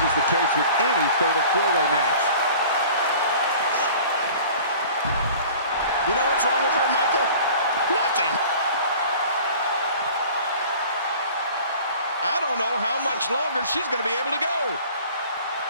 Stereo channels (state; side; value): inverted; both; correlation -0.45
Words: is the case with any fatal four-way match. You know what's wrong with her, Michael? Nothing. I don't know how much longer she's going to be able to go.